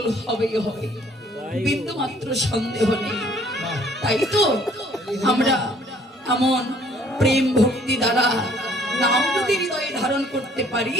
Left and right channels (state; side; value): normal; both; correlation 0.60